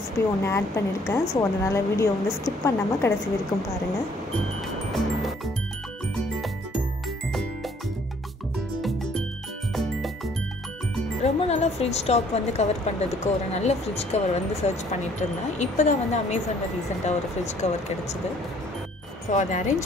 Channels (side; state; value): both; normal; correlation 0.61